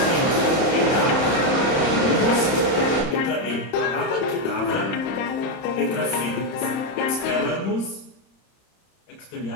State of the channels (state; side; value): late; right; 30 ms